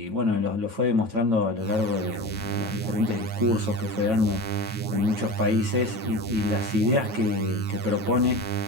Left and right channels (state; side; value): late; left; 9.0 ms